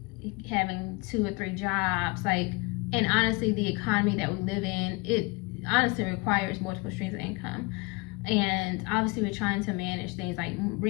having 2 or 3 jobs, and honestly, the economy that we live in, it honestly requires multiple streams of income. And obviously we're trying to manage things like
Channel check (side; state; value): right; quieter; 27.2 dB